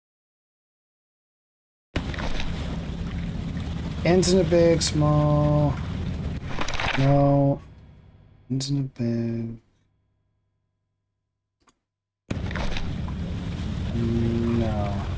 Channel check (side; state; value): both; identical; correlation 1.00